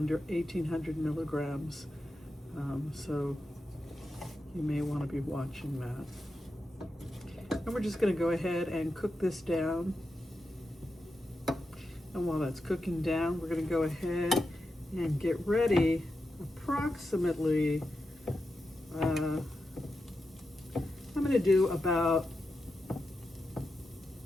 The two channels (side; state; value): both; normal; correlation 0.89